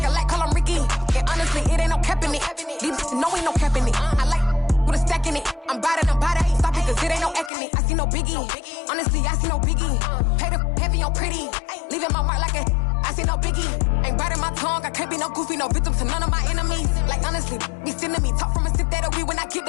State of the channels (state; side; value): drops out; right; at 7.5 s